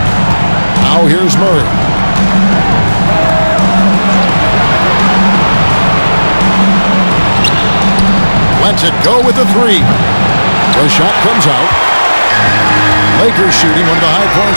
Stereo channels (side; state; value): both; inverted; correlation -1.00